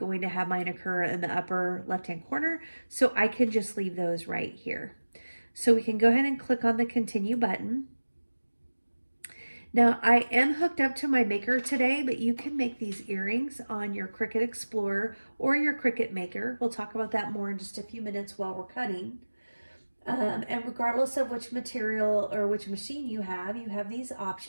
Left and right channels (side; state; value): both; inverted; correlation -1.00